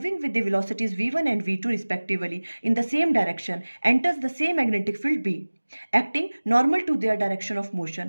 with the velocities v1 and v2 respectively in the same direction, enters the same magnetic field B, acting normal to their direction of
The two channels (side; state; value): both; inverted; correlation -1.00